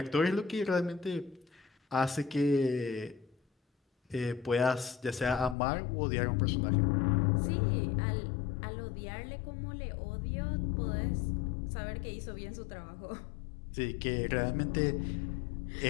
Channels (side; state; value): right; drops out; at 5.6 s